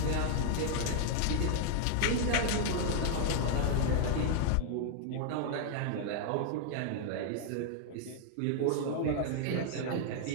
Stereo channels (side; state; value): both; different; correlation -0.01